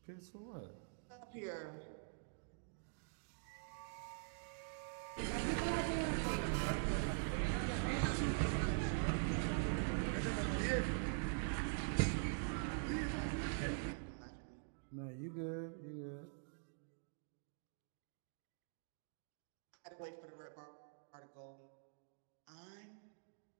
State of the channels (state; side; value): silent; left; digital silence